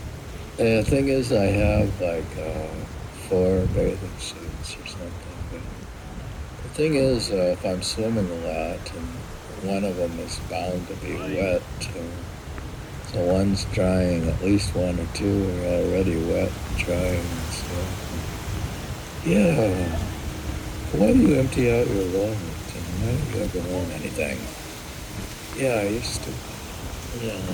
thing is I have 4 bathing suits or something. But the thing is, if I'm swimming a lot, and one of them is bound to be wet, so one's drying, at least 1 or 2 are already wet and drying and stuff. Yeah. Why do you empty out your wallet? And why don't you ever own anything? Yeah, I used to. Yeah.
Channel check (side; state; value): both; identical; correlation 1.00